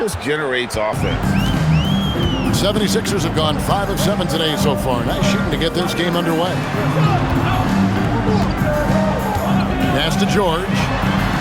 generates offense. 76ers have gone 5 of 7 today so far. Nice shooting to get this game underway. Pass to George.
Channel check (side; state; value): both; identical; correlation 1.00